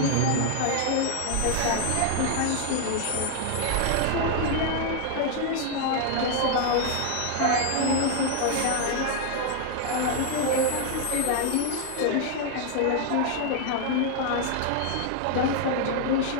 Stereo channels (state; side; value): different; both; correlation 0.00